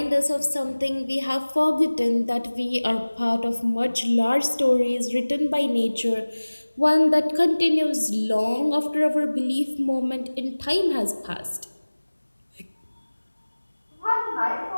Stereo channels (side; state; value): both; inverted; correlation -1.00